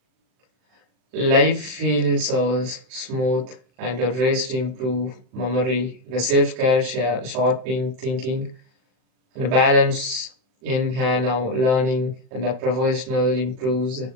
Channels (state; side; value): late; left; 39 ms